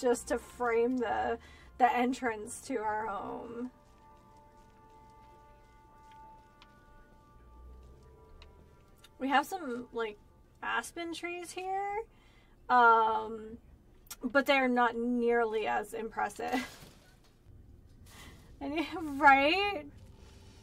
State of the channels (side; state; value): both; identical; correlation 1.00